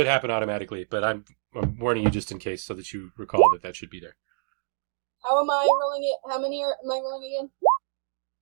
happen automatically, but I'm warning you just in case, so that you recall that should be there. How am I rolling it? How many am I rolling again?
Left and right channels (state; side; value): silent; left; digital silence